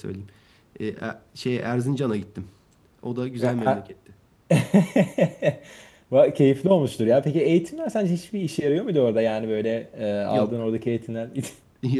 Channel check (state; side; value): identical; both; correlation 1.00